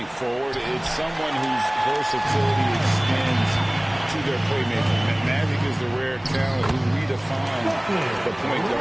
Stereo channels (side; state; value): left; noise; hum, 28 dB below the sound